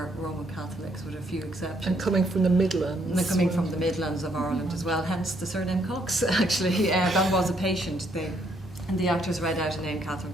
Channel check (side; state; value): both; normal; correlation 0.71